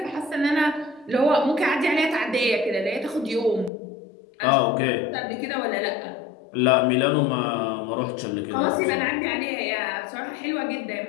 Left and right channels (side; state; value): right; drops out; at 3.7 s